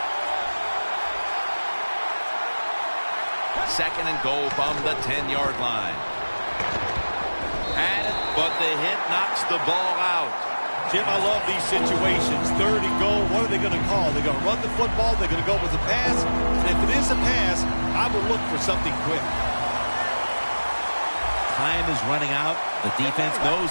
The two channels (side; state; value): both; inverted; correlation -1.00